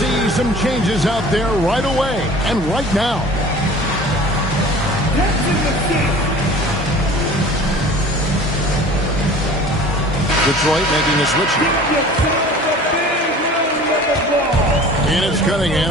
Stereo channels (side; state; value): both; normal; correlation 0.44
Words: some changes out there right away and right now. Detroit making a switch. And it's